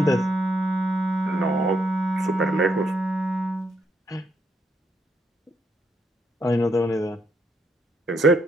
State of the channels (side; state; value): both; normal; correlation 0.76